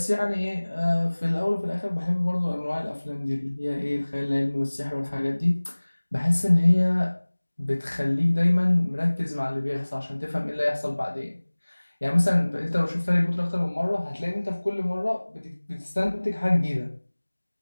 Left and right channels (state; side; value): inverted; both; correlation -1.00